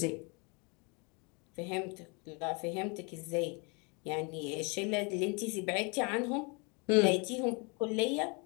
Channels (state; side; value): quieter; right; 32.1 dB